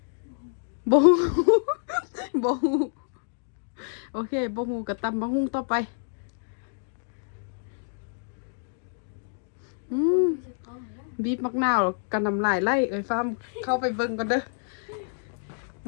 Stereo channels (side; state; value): right; silent; digital silence